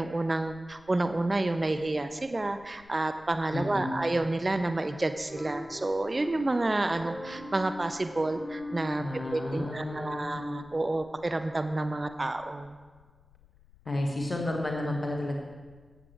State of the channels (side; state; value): left; noise; rumble, 27 dB below the sound